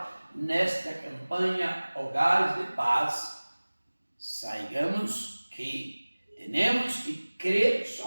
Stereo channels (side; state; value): both; inverted; correlation -1.00